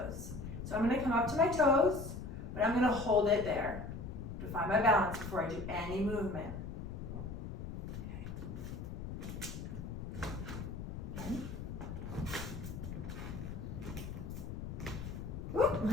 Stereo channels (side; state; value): left; noise; rumble, 7 dB below the sound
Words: So I'm gonna come up to my toes, but I'm gonna hold it there to find my balance before I do any movement. Okay. Again.